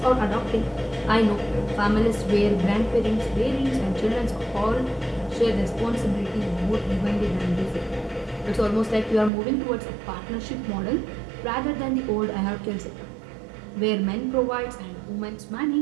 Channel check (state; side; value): drops out; left; at 9.3 s